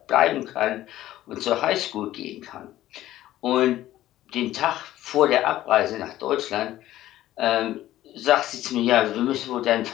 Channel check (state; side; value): quieter; right; 14.2 dB